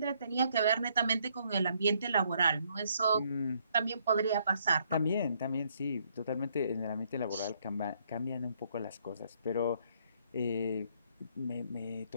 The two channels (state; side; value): inverted; both; correlation -0.69